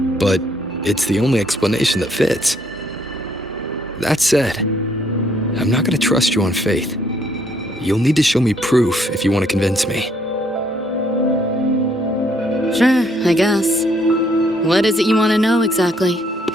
but it's the only explanation that fits. That said, I'm not going to trust you on faith. You'll need to show me proof if you want to convince me. Sure, I guess. What is it you want to know exactly?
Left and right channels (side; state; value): both; normal; correlation 0.68